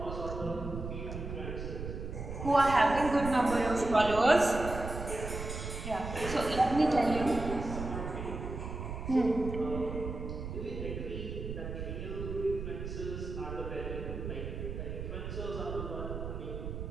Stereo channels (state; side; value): noise; right; rumble, 6 dB below the sound